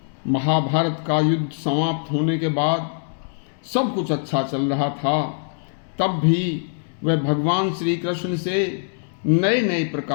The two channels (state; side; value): silent; right; digital silence